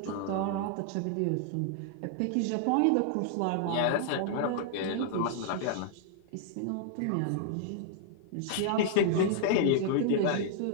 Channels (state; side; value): different; both; correlation -0.01